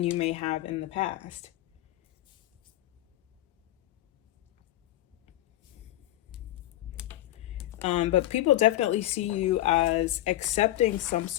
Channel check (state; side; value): quieter; right; 14.7 dB